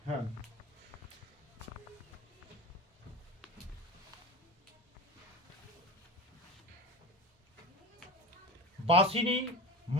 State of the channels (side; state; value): both; normal; correlation 0.30